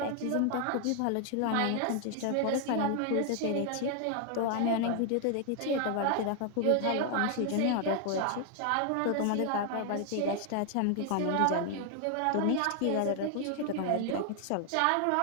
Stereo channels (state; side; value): different; both; correlation 0.00